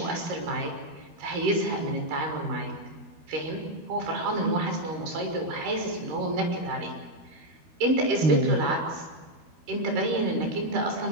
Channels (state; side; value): late; left; 12 ms